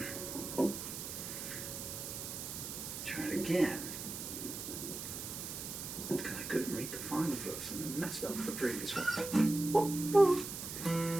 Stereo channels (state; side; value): noise; right; hiss, 7 dB below the sound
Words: Try it again. Because I couldn't read the final verse and I messed up the previous one.